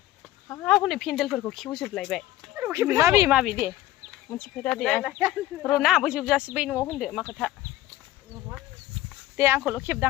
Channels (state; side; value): quieter; right; 15.1 dB